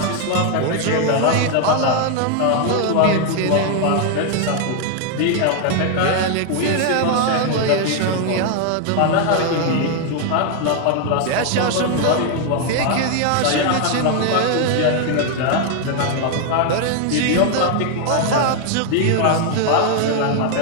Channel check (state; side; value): different; both; correlation 0.00